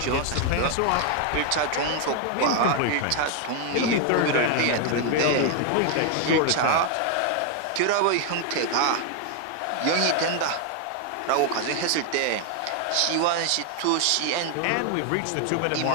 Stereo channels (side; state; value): both; different; correlation 0.00